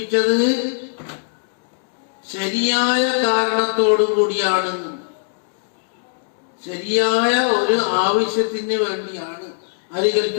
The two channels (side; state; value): right; silent; digital silence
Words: ശരിയായ കാരണത്തോടു കൂടിയാണ്, ശരിയായ ഒരു ആവശ്യത്തിന് വേണ്ടിയാണ് ആര്